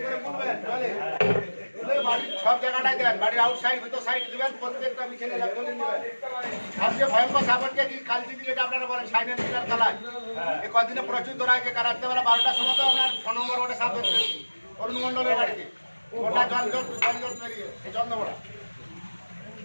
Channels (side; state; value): both; inverted; correlation -1.00